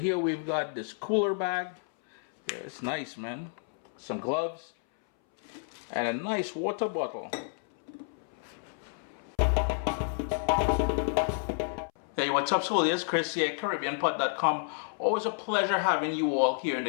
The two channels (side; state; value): right; silent; 58 dB below the other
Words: we've got this cooler bag. Yeah, it's nice, man. Some gloves and a nice water bottle. Hey, what's up, Soul? It's Chris here at CaribbeanPot.com. Always a pleasure having you all here in the